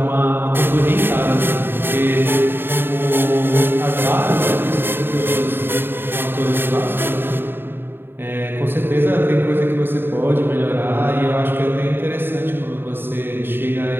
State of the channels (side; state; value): left; late; 0.10 ms